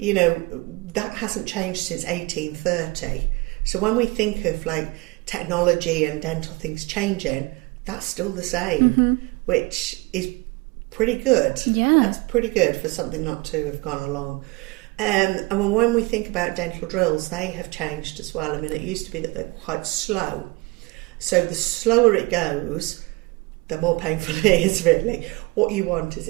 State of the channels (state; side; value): quieter; left; 23.8 dB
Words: know, that hasn't changed since 1830. So when we think of like technology and dental things changing, that's still the same, which is pretty good. Yeah. That's pretty good for something not to have gone along. And when we think about dental drills, they have changed as well. I mean, it used to be that they're quite slow. So the slower it goes, the more painful it is, really. What you want is